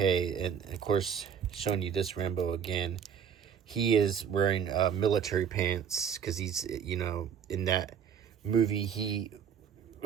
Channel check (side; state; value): left; quieter; 7.8 dB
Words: And of course, showing you this Rambo again, he is wearing military pants because he's, in that movie, he